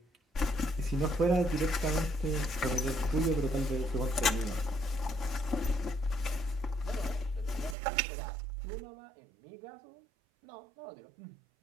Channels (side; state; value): left; drops out; at 7.8 s